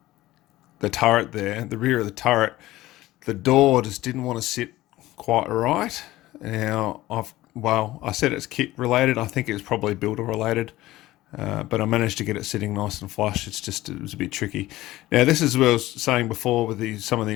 turret there, the rear of the turret. The door just didn't want to sit quite right. Now, I said it's kit related. I think it was probably builder related. But I managed to get it sitting nice and flush. It was a bit tricky. Now, this is what I was saying before with some of the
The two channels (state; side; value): quieter; right; 16.7 dB